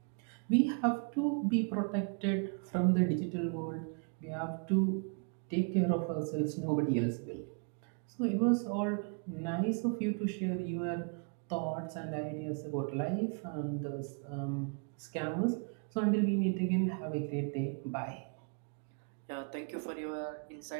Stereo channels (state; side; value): quieter; left; 39.7 dB